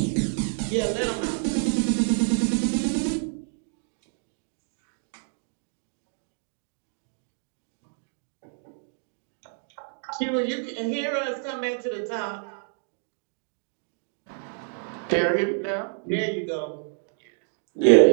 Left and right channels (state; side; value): silent; left; 60 dB below the other